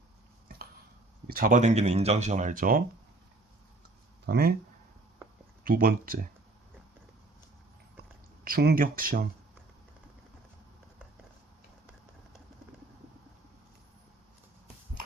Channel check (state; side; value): quieter; left; 3.0 dB